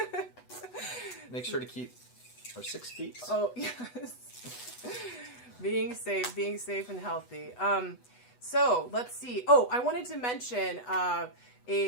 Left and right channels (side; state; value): right; late; 8.1 ms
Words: in. Make sure to keep our 6 feet. Oh yes. Being safe and healthy. So let's see. Oh, I wanted to mention